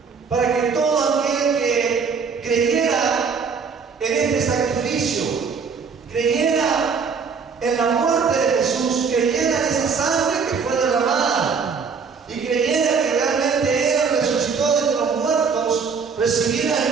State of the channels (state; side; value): quieter; left; 5.6 dB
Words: para que todo aquel que creyera en este sacrificio, creyera en la muerte de Jesús, creyera en esa sangre que fue derramada y creyera que realmente Él resucitó de entre los muertos, recibiera